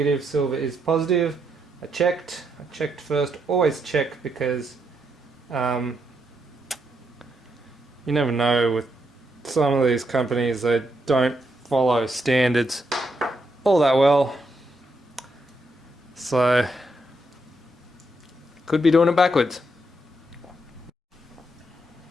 silver is positive. I checked first. Always check, because you never know with some of these companies. They don't follow standards all that well, so could be doing it backwards.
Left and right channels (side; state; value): both; normal; correlation 0.79